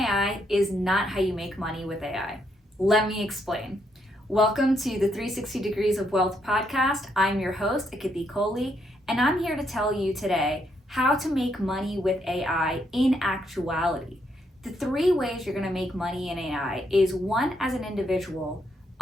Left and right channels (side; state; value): both; normal; correlation 0.76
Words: is not how you make money with AI. Let me explain. Welcome to the 360 Degrees of Wealth podcast. I'm your host, Akiti, and I'm here to tell you today how to make money with AI in actuality. The three ways you're going to make money in AI is one, as an individual,